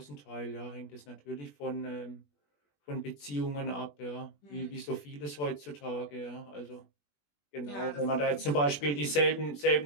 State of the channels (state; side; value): late; right; 21 ms